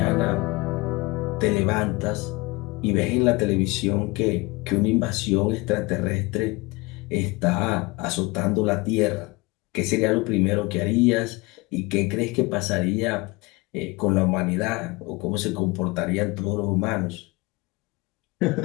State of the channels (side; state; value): right; quieter; 24.5 dB